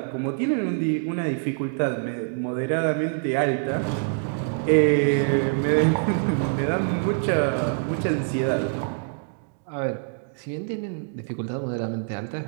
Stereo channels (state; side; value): silent; left; digital silence